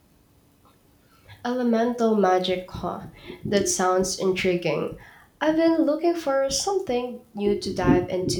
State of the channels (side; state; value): both; identical; correlation 1.00